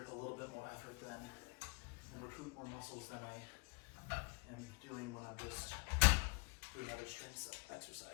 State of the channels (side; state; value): right; quieter; 32.2 dB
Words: a little bit more effort than and recruit more muscles than I am doing when I'm just doing other strength